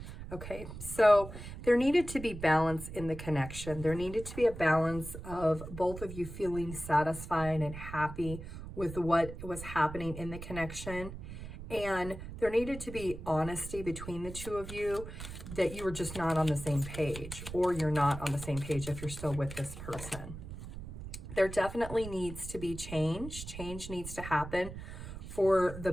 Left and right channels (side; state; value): right; noise; rumble, 10 dB below the sound